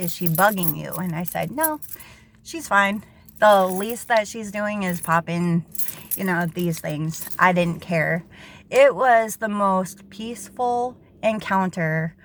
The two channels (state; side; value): identical; both; correlation 1.00